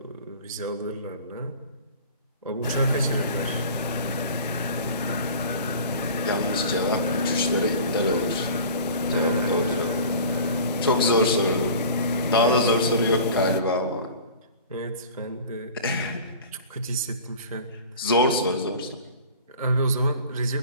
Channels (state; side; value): inverted; both; correlation -0.41